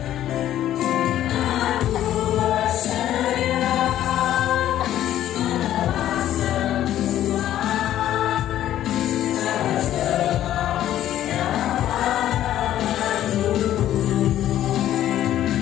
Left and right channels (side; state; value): right; quieter; 12.2 dB